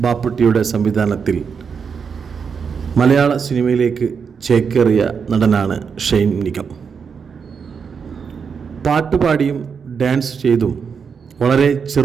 ബാപ്പുട്ടിയുടെ സംവിധാനത്തിൽ മലയാള സിനിമയിലേക്ക് ചേക്കേറിയ നടനാണ് ഷൈൻ നിഗം. പാട്ടുപാടിയും ഡാൻസ് ചെയ്തും വളരെ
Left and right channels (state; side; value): quieter; left; 6.2 dB